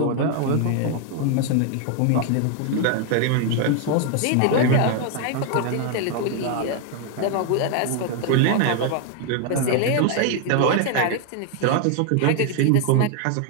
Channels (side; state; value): both; different; correlation 0.00